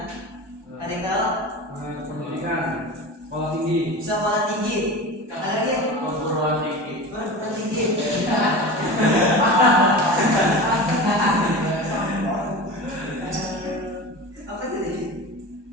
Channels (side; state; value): left; late; 1.2 ms